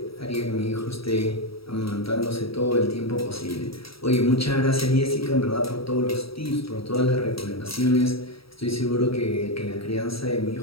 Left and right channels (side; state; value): right; late; 0.76 ms